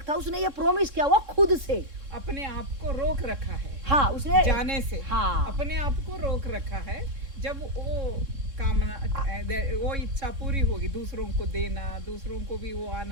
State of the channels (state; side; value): late; left; 3.6 ms